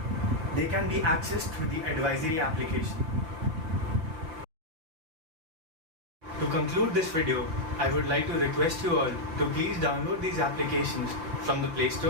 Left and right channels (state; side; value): late; left; 6.2 ms